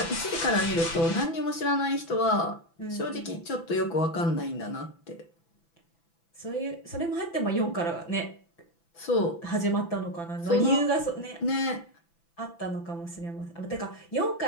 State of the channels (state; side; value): late; right; 6.0 ms